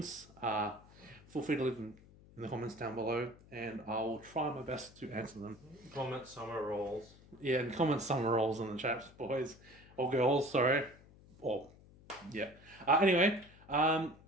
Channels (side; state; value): left; noise; hum, 23 dB below the sound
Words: feel free to leave them in the comments down below, and I'll try my best to answer them. Comment summer rolls. Yeah, and comment summer rolls in the chat, boys. Or girls, sorry. Or, yeah. Anyway, I'm